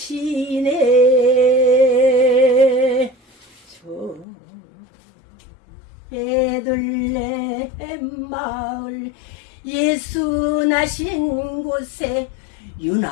저 베들레헴 마을 예수 나신 곳에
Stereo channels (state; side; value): drops out; right; at 4.2 s